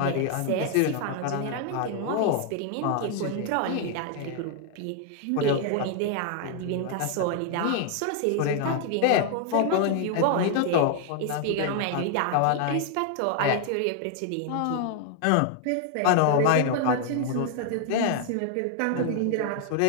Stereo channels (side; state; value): both; different; correlation 0.00